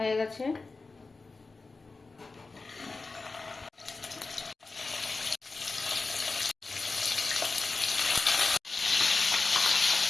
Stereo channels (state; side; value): quieter; right; 3.8 dB